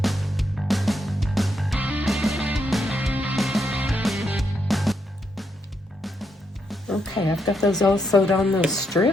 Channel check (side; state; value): both; normal; correlation 0.79